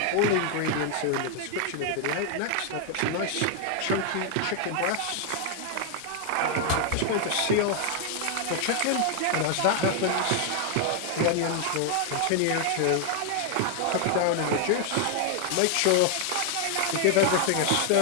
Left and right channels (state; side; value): different; both; correlation 0.00